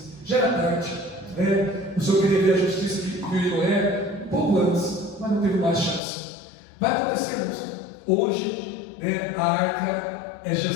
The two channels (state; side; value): drops out; right; at 6.0 s